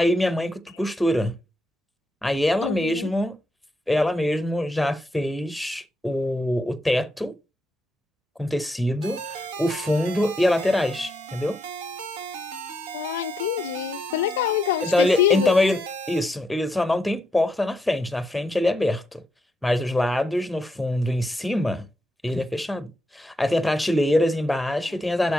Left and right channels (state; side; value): normal; both; correlation 0.80